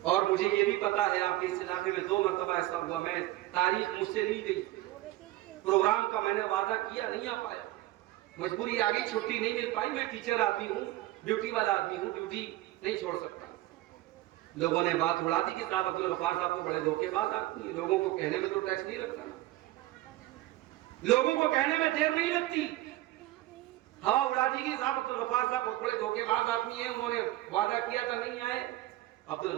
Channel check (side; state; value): left; quieter; 16.8 dB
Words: اور مجھے یہ بھی پتا ہے آپ کے اس علاقے میں 2 مرتبہ ایسا ہوا، میں تاریخ مجھ سے لی گئی، پروگرام کا میں نے وعدہ کیا، نہیں آ پایا، مجبوری آ گئی، چھٹی نہیں مل پائی، میں ٹیچر آدمی ہوں، ڈیوٹی والا آدمی ہوں، ڈیوٹی نہیں چھوڑ سکتا۔ لوگوں نے بات اڑا دی کہ صاحب عبدالغفار صاحب کو بڑے دھوکے باز آدمی ہیں، لوگوں کو کہنے میں تو ٹیکس نہیں لگتا نا، لوگوں کو کہنے میں دیر نہیں لگتی، ہوا اڑا دی کہ صاحب عبدالغفار صاحب بہت بڑے دھوکے باز آدمی ہیں، انہوں نے وعدہ کیا تھا نہیں آئے۔